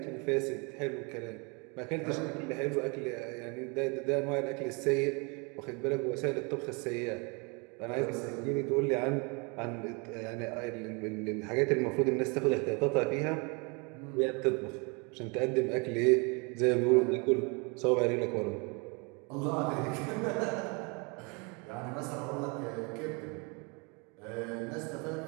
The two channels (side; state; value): left; quieter; 31.4 dB